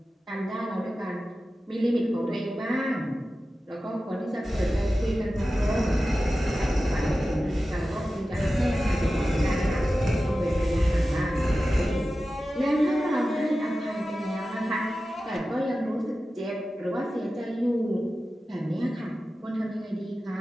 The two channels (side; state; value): both; normal; correlation 0.94